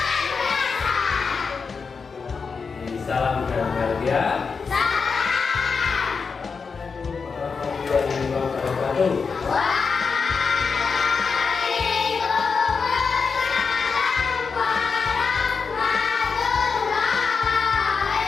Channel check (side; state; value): right; quieter; 5.2 dB